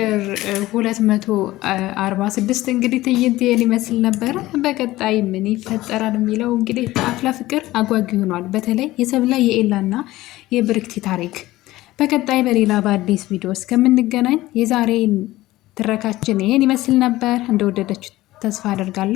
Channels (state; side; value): quieter; right; 17.2 dB